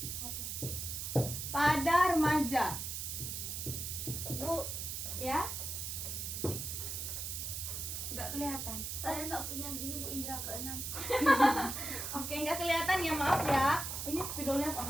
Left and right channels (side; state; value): right; noise; hiss, 4 dB below the sound